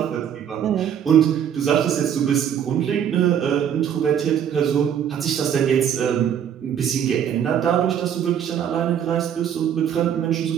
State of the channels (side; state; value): left; quieter; 9.0 dB